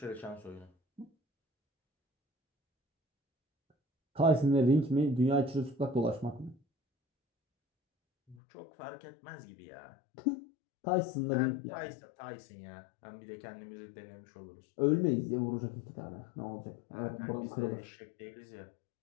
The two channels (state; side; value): drops out; right; at 8.3 s